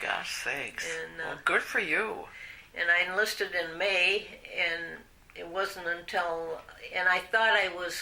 sakes. And, well, good for you. And I enlisted in May, and it wasn't until, and I thought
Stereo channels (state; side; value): identical; both; correlation 1.00